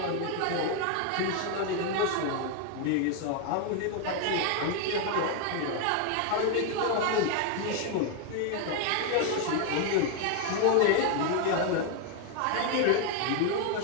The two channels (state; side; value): different; both; correlation 0.01